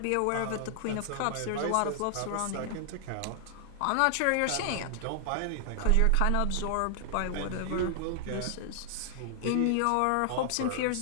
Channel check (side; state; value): both; different; correlation 0.00